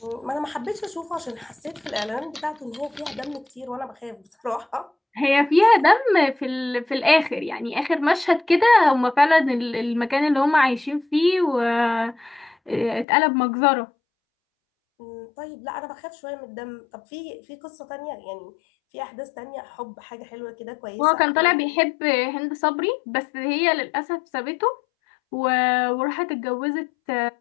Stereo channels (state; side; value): drops out; right; at 13.1 s